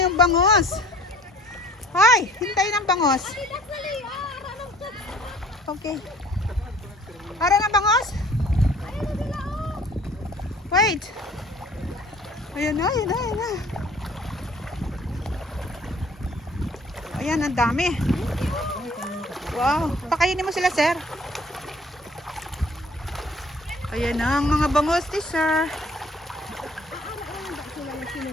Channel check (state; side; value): normal; both; correlation 0.54